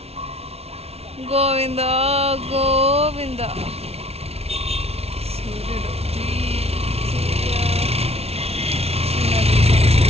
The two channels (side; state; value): left; late; 0.30 ms